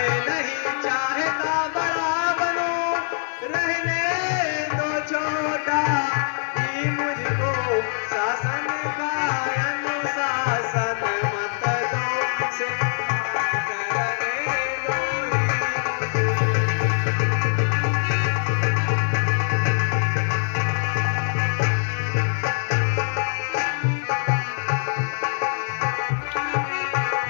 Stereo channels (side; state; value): right; silent; 63 dB below the other